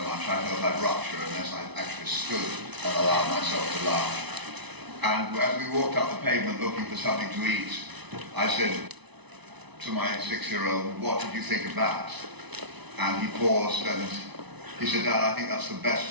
much I felt I'd rupture unless I actually stood and allowed myself to laugh. And as we walked up the pavement looking for something to eat, I said to my 6-year-old, "What did you think of that?" And he paused and he said, "Dad, I think that's the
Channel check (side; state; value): left; late; 0.99 ms